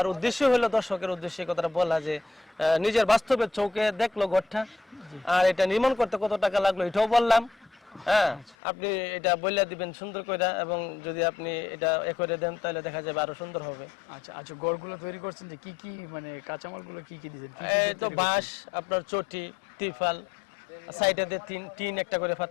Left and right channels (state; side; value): drops out; right; at 8.6 s